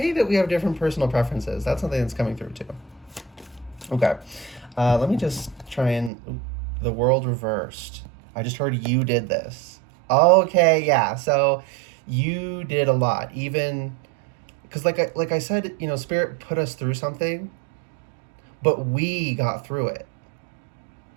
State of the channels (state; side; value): drops out; left; at 6.1 s